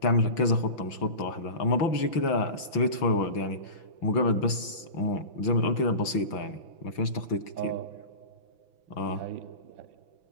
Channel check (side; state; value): right; late; 6.0 ms